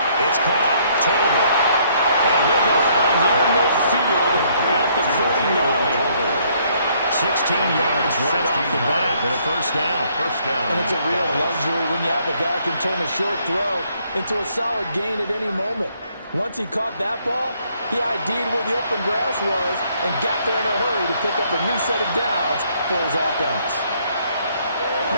It's caught. Tolbert. And he'll go out near midfield at the 49. 16 yards right off the bat and a first down. And it's a real luxury when you have a guy who can turn a short throw into a solid gain at any moment. Once he caught that ball, he ID'd where the open grass was and got there in a hurry to pick up a new set of downs for his offense.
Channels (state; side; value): inverted; both; correlation -0.67